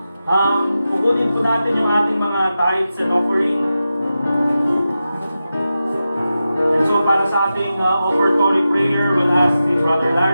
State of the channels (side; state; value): both; inverted; correlation -0.92